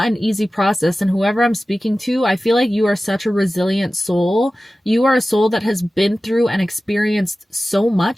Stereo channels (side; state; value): both; normal; correlation 0.96